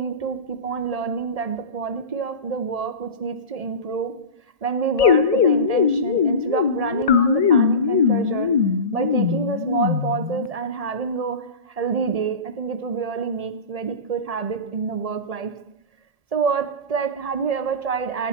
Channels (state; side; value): late; left; 1.7 ms